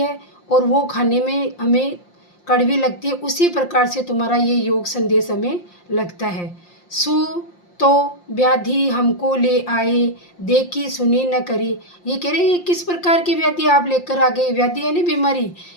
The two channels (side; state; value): right; late; 5.7 ms